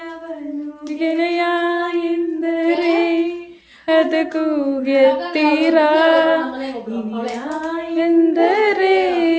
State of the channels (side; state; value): both; identical; correlation 1.00